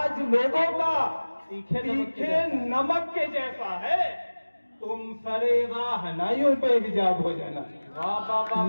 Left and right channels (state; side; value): inverted; both; correlation -1.00